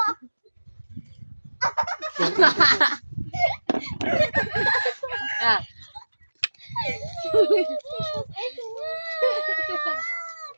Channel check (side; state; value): both; inverted; correlation -1.00